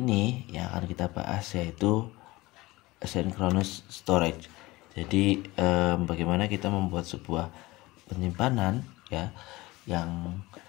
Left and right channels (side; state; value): right; quieter; 20.4 dB